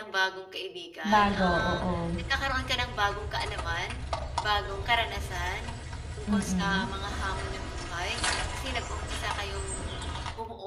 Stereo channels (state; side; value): identical; both; correlation 1.00